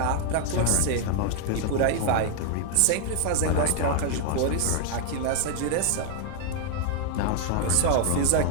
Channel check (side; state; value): both; different; correlation 0.00